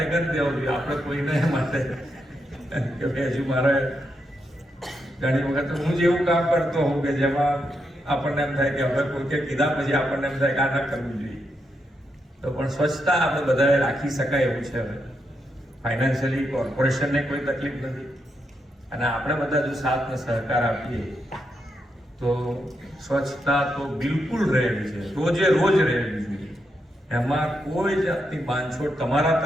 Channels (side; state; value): both; normal; correlation 0.82